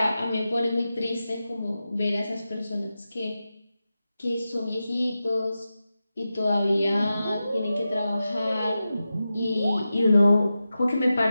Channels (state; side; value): inverted; both; correlation -0.92